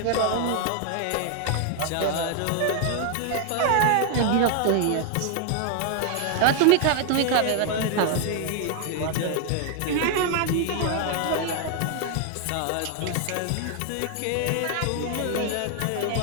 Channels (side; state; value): both; different; correlation 0.00